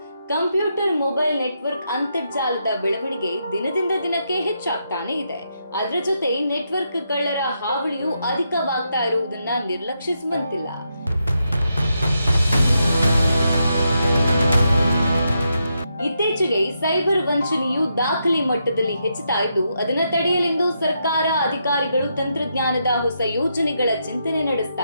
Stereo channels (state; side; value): inverted; both; correlation -0.82